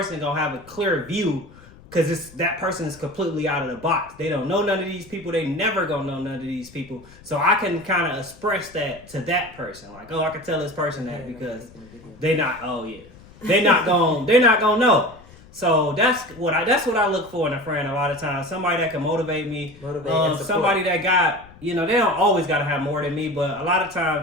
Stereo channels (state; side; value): noise; left; rumble, 23 dB below the sound